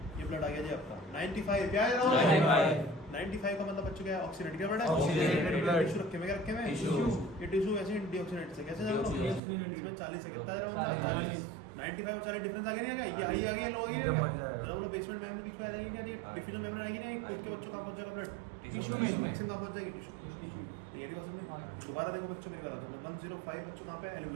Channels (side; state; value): left; drops out; at 9.4 s